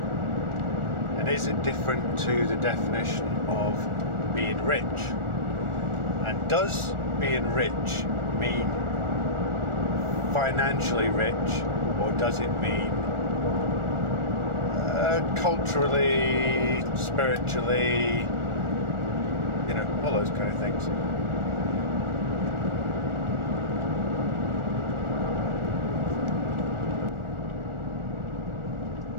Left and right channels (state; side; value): late; left; 1.4 ms